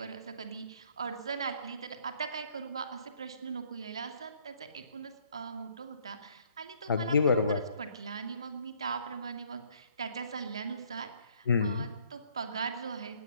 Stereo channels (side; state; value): both; inverted; correlation -0.63